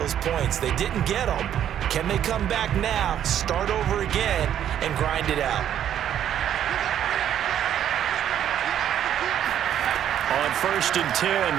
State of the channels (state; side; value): quieter; left; 10.3 dB